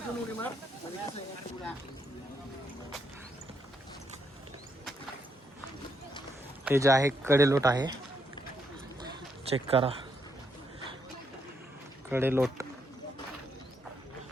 हे जे आहे कडेलोट आहे, चेक करा कडेलोट.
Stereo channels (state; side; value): normal; both; correlation 0.76